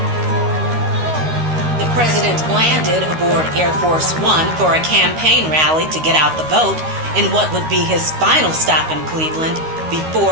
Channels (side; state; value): left; late; 13 ms